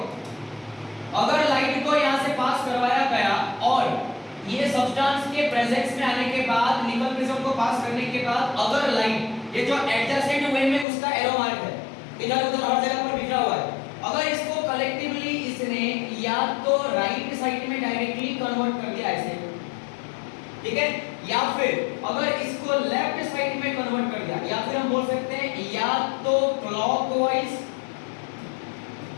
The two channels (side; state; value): right; drops out; at 10.9 s